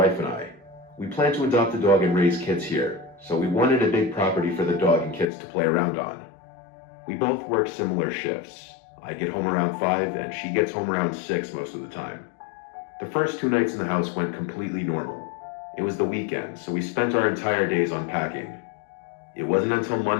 and I. We plan to adopt a dog and raise kids here, so we wanted a big property for the dog and kids to play around on. We both work similar shifts. I get home around 5 and she gets home around 6 most of the time. The first 2 nights in the house went completely normal. It was the weekend, so we spent our entire days unpacking. It wasn't until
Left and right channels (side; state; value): right; drops out; at 5.2 s